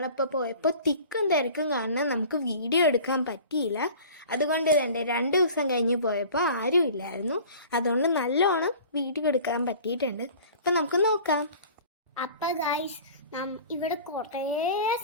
പോയപ്പോൾ തിക്കും തിരക്കും കാരണം നമുക്ക് വീഡിയോ എടുക്കാൻ പറ്റിയില്ല. അതുകൊണ്ട് തന്നെ 2 ദിവസം കഴിഞ്ഞ് പോയപ്പോൾ ആരും ഇല്ലായിരുന്നു. അതുകൊണ്ട് നല്ലോണം വീഡിയോ എടുക്കാൻ പറ്റിയിട്ടുണ്ട്. അപ്പം നമുക്ക് നോക്കാം. അപ്പം ഗൈസ്, ഇവിടെ കുറേ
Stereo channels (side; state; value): both; inverted; correlation -0.43